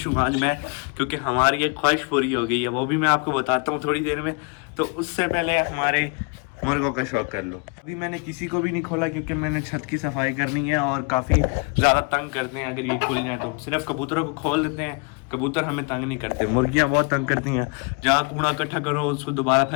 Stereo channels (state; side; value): quieter; right; 32.1 dB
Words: हूँ आज मैं, क्योंकि हमारी एक ख्वाहिश पूरी हो गई है, वो भी मैं आपको बताता हूँ थोड़ी देर में। तो उससे पहले हमारे मुर्गों का शौक कर लो। अभी मैंने किसी को भी नहीं खोला क्योंकि मैंने छत की सफाई करनी है और काफ़ी ज़्यादा तंग करते हैं अगर ये खुल जाए तो। सिर्फ कबूतरों को खोल देते हैं, कबूतर हमें तंग नहीं करते, मुर्गियां बहुत तंग करती हैं। जहाँ कूड़ा इकट्ठा करो उसको दोबारा